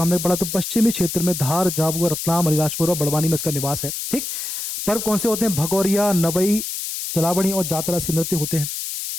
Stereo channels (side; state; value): left; noise; hiss, 5 dB below the sound